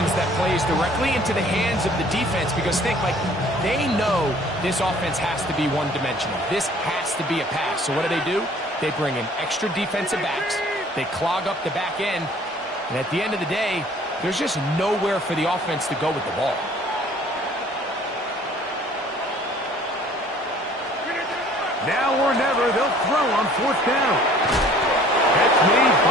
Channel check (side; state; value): both; normal; correlation 0.54